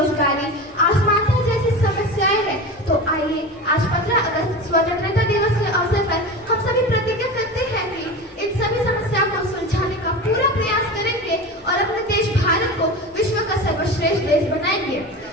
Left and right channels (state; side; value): normal; both; correlation 0.28